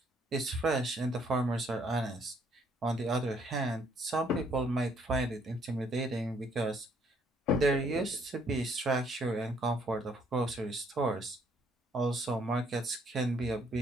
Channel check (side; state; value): both; normal; correlation 0.67